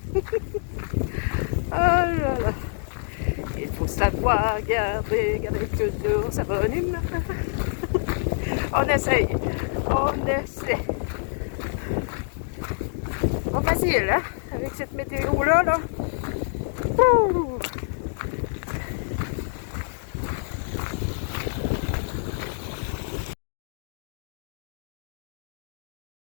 Oh là là. Il faut savoir garder toujours sa bonne humeur. On essaye. On essaie. Pas facile, hein? Avec cette météo-là, là. Ouh.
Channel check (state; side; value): silent; right; digital silence